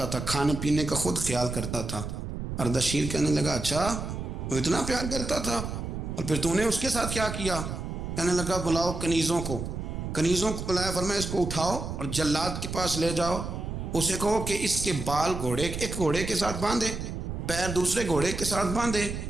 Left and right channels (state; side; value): noise; right; rumble, 5 dB below the sound